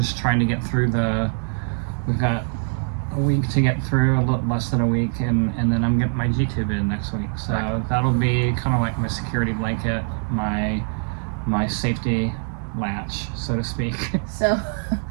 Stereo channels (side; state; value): left; silent; 63 dB below the other